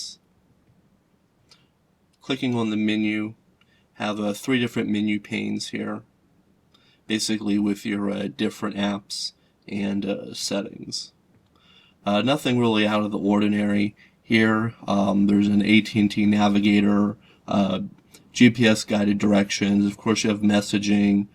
Clicking on the menu, have 3 different menu panes here, basically with your different apps and settings. Nothing really out of the ordinary here. There's an AT&T navigator, GPS guided directions. Of course, you have messaging,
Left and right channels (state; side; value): identical; both; correlation 1.00